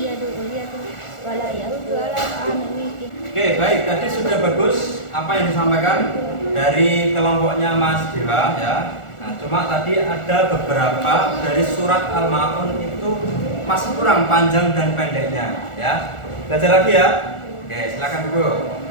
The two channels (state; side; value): late; right; 1.4 ms